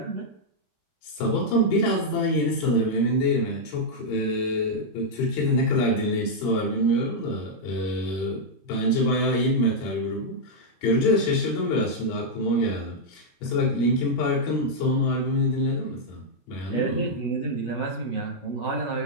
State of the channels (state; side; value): late; right; 17 ms